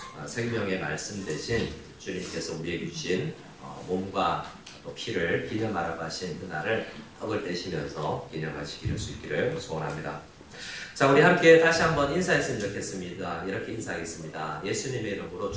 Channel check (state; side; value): identical; both; correlation 1.00